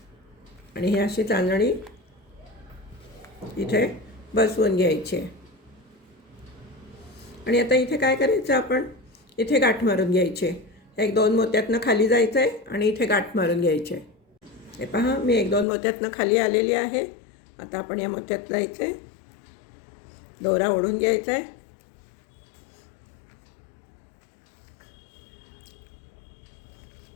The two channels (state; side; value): drops out; right; at 15.7 s